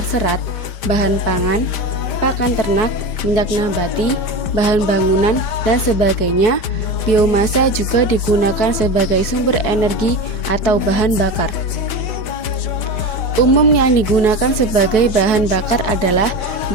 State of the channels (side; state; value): right; late; 5.1 ms